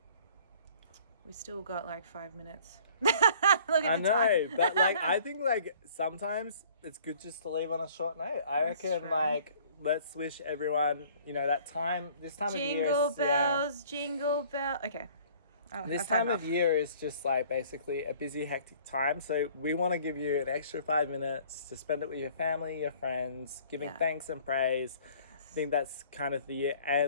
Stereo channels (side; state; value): both; inverted; correlation -0.54